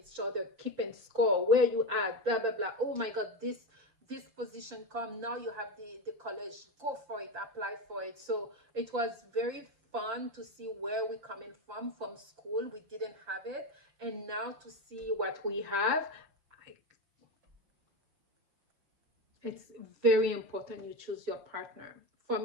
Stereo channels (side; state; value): left; late; 6.3 ms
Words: other, keeping score, where you at, blah, blah, blah. Oh my God, this position come, now you have the college, go for it, apply for it. So it was very fun to see where we're coming from school. We didn't have it, and now to see what we have, it's very important you choose your partner. For